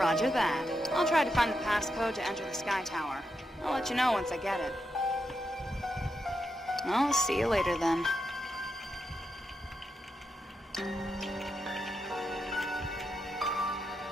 that. I'll try to find the passcode to enter the Sky Tower. I'll let you know once I get it. I'll see you later then.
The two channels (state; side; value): normal; both; correlation 0.84